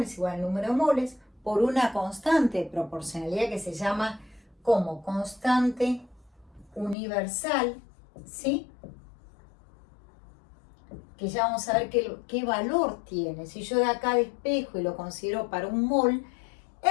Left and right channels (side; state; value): right; drops out; at 7.0 s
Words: es igual al número de moles por una constante de proporcionalidad que se llama como constante universal, ¿sí?, que ya vamos a ver qué valor tiene. Si yo de acá despejo y lo considero para un mol,